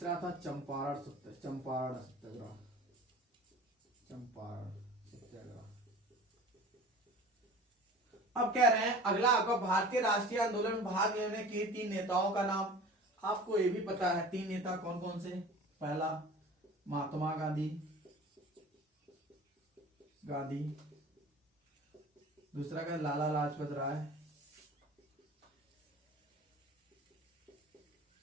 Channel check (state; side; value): normal; both; correlation 0.41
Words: था चंपारण सत्याग्रह। अब कह रहे हैं अगला आपका भारतीय राष्ट्रीय आंदोलन में भाग लेने के तीन नेताओं का नाम। आपको ये भी पता है तीन नेता कौन कौन से? पहला महात्मा गांधी, दूसरा का लाला लाजपत राय,